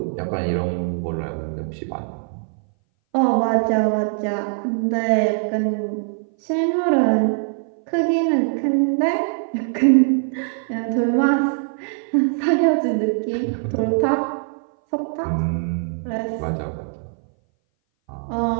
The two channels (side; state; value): left; silent; 60 dB below the other